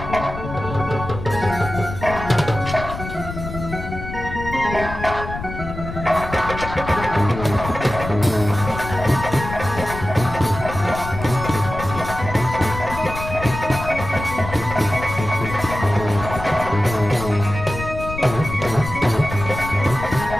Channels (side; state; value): left; noise; rumble, 9 dB below the sound